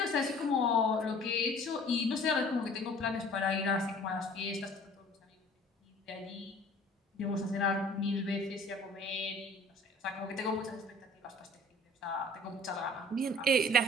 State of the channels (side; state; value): both; normal; correlation 0.50